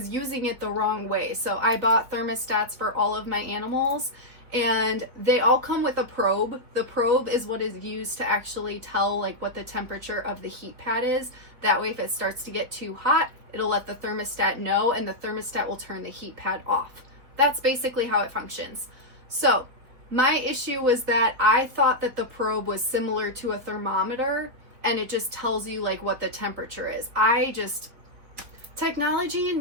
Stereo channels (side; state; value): left; late; 4.1 ms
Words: using it the wrong way. So I bought thermostats for all of my animals and they all come with a probe. The probe is what is used to actually tell like what the temperature of the heat pad is. That way if it starts to get too hot, it'll let the thermostat know and the thermostat will turn the heat pad off. That's basically how it functions. So my issue was that I thought that the probe was similar to a thermometer and it just tells you like what the temperature is. Technology and